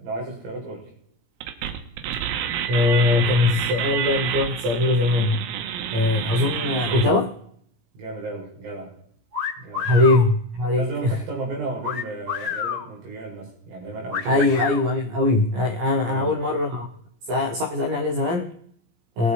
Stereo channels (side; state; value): left; late; 17 ms